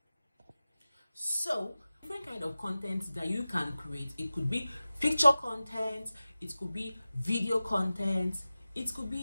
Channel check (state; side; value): inverted; both; correlation -0.96